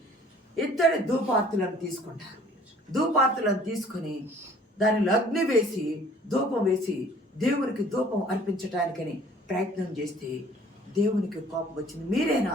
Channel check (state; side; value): normal; both; correlation 0.54